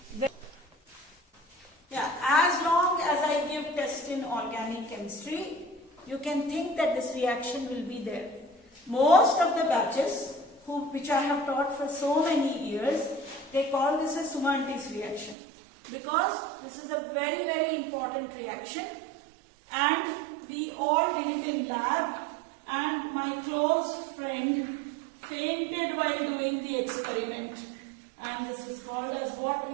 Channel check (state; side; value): drops out; left; at 15.4 s